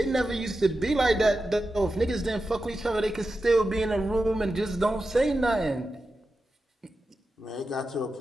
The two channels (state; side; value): normal; both; correlation 0.91